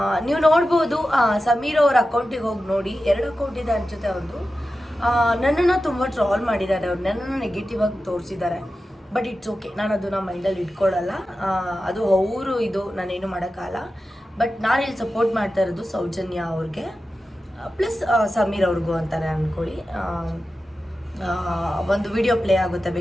ನೀವು ನೋಡ್ಬೋದು ಸಮೀರ್ ಅವ್ರ ಅಕೌಂಟಿಗೆ ಹೋಗಿ ನೋಡಿ. 2 ಅಕೌಂಟ್ ಇದೆ ಅನ್ಸುತ್ತೆ ಅವ್ರದ್ದು. ನನ್ನನ್ನು ತುಂಬ ಟ್ರಾಲ್ ಮಾಡಿದ್ದಾರೆ, ಅವ್ರು ನನ್ನನ್ನು ನೆಗೆಟಿವ್ ಆಗಿ ತೋರಿಸಿದ್ದಾರೆ. ಬಟ್ ಇಟ್ಸ್ ಓಕೆ, ನಾನು ಅದನ್ನ ಮೈಂಡಲ್ಲಿ ಇಟ್ಕೊಳ್ಳಲ್ಲ. ಅದು ಅವರು ಇದು ನಾನೇನು ಮಾಡೋಕ್ಕಾಗಲ್ಲ. ಬಟ್ ನಾನು ಇಲ್ಲಿ ಸಪೋರ್ಟ್ ಮಾಡ್ತಾ ಇರೋದು ಸೌಜನ್ಯ ಅವ್ರಿಗೆ ಪ್ಲಸ್ ಸಮೀರ್ ಅವ್ರಿಗೂ ಅಂತಾರೆ ಅಂದ್ಕೊಳ್ಳಿ. ಒಂದು ವಿಡಿಯೋ ಪ್ಲೇ ಆಗುತ್ತೆ,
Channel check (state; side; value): normal; both; correlation 0.93